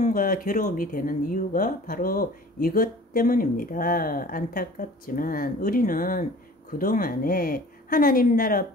괴로움이 되는 이유가 바로 이것 때문입니다. 안타깝지만 우리는 그동안에 하나님 나라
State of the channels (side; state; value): both; normal; correlation 0.46